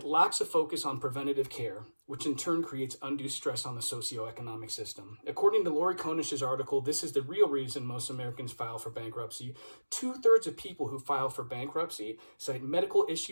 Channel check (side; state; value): both; inverted; correlation -1.00